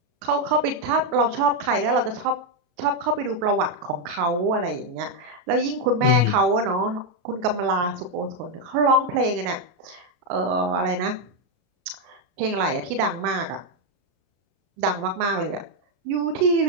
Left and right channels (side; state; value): left; late; 33 ms